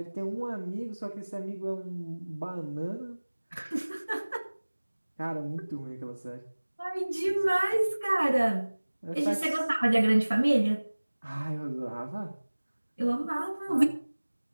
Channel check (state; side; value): inverted; both; correlation -1.00